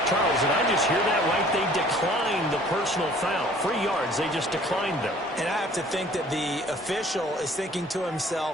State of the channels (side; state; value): both; normal; correlation 0.54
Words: Charles, and I just hear that right? They declined the personal foul. 3 yards, they just declined them. And I have to think that the official is thinking to